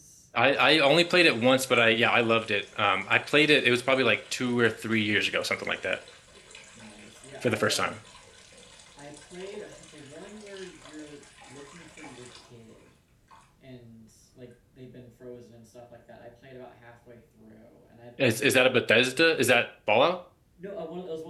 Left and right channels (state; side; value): identical; both; correlation 1.00